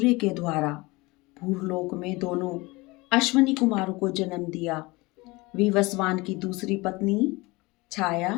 के द्वारा भूलोक में दोनों अश्वनी कुमारों को जन्म दिया। विवस्वान की दूसरी पत्नी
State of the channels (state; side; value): quieter; right; 23.2 dB